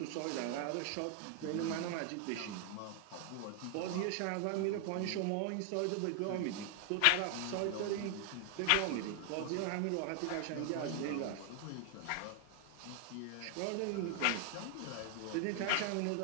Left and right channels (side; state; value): both; different; correlation 0.00